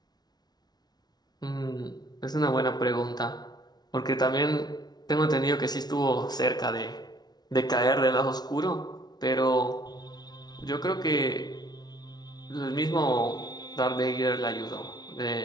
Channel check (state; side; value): late; right; 0.19 ms